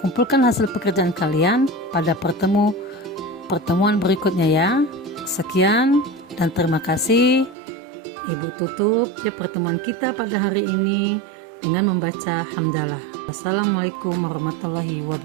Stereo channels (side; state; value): left; drops out; at 7.6 s